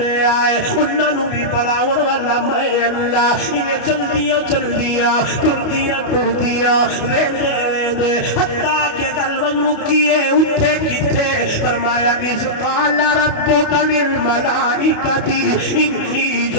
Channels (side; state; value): right; late; 28 ms